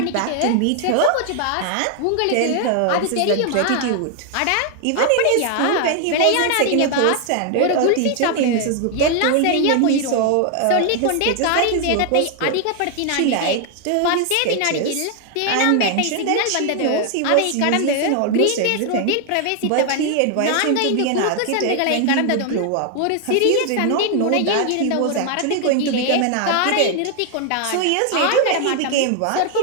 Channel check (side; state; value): both; different; correlation 0.00